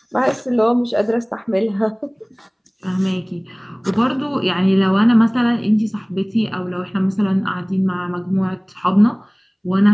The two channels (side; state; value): both; identical; correlation 1.00